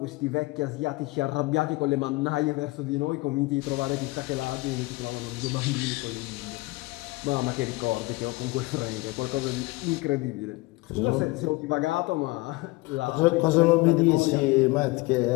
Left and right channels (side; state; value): right; quieter; 22.7 dB